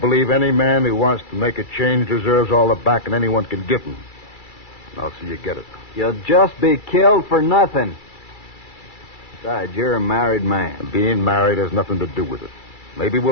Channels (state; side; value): late; right; 2.3 ms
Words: any man who wants to make a change deserves all the backing anyone can give him. I'll see you get it. You'll just be killed for nothing. Besides, you're a married man. Being married has nothing to do with it. Maybe